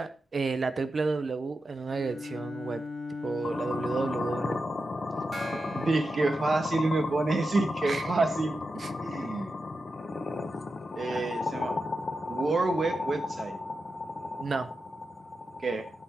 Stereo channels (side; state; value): both; normal; correlation 0.89